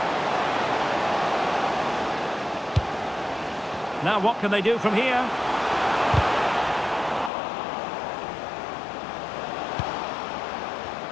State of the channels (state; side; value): drops out; right; at 7.3 s